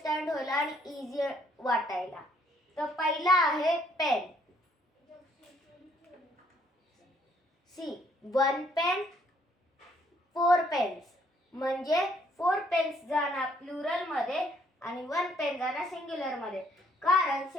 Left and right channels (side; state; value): both; normal; correlation 0.66